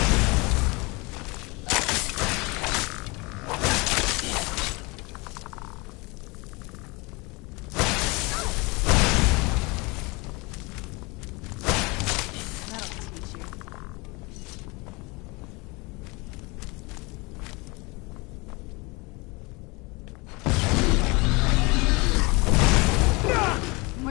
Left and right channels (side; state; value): right; quieter; 26.3 dB